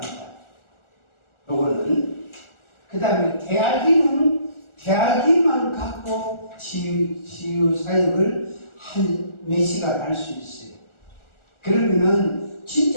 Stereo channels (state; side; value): late; right; 1.4 ms